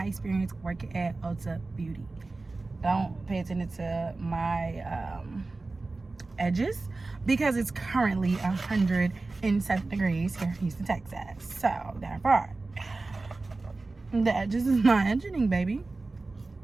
experience working at Ulta Beauty. Don't pay attention to my edges because it's currently 107 degrees here in Houston, Texas. So therefore, the edges is not edging, baby.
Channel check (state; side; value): quieter; left; 3.5 dB